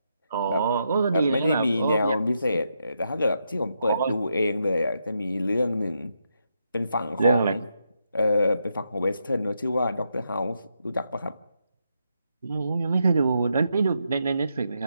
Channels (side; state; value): both; inverted; correlation -0.81